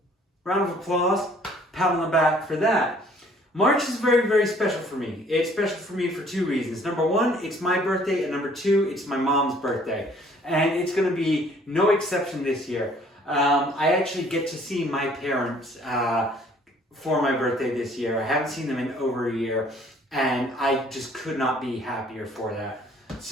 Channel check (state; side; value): normal; both; correlation 0.58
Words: round of applause, pat on the back for that. March is very, very special for me. It's special for me for two reasons. Number one, it's my birthday, and number two, it's my mom's birthday. And it's going to be no exception this year. I actually get to see my parents for my birthday this year. I haven't seen them in over a year, and I just could not be happier for that.